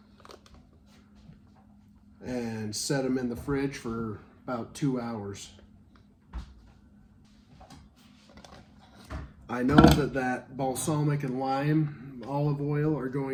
and set them in the fridge for about 2 hours. I know that balsamic and lime olive oil are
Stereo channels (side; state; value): both; identical; correlation 1.00